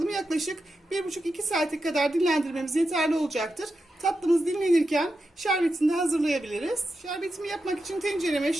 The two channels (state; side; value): normal; both; correlation 0.89